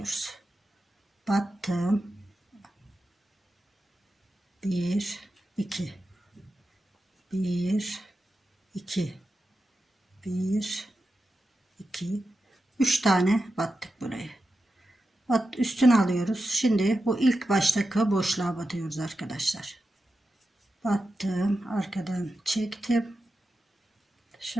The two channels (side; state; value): both; normal; correlation 0.90